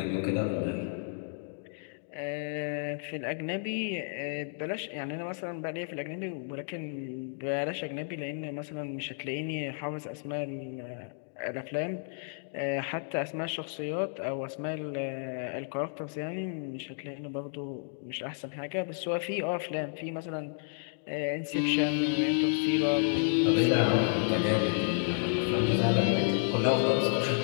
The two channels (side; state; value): right; silent; digital silence